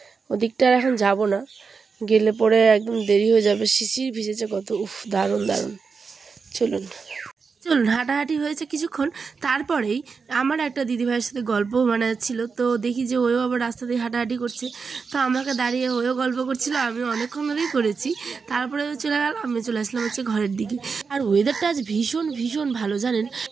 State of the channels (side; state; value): left; quieter; 5.2 dB